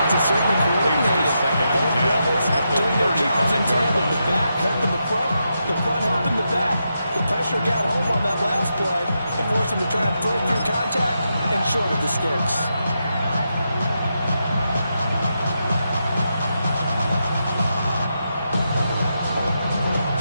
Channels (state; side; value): inverted; both; correlation -0.85